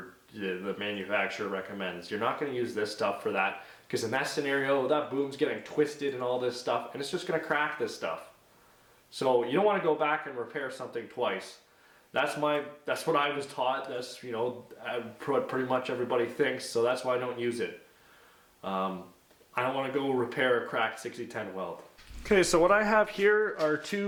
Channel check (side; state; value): both; identical; correlation 1.00